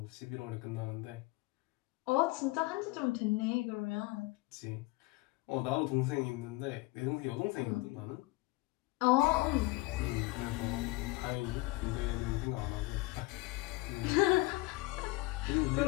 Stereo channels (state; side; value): quieter; right; 21.8 dB